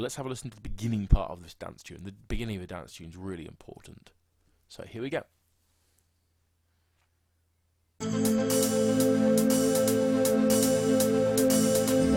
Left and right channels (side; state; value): both; identical; correlation 1.00